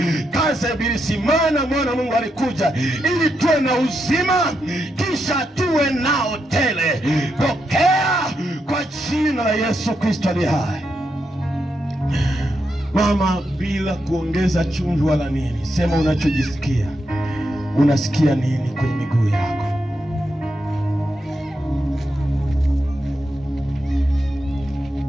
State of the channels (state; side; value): normal; both; correlation 0.83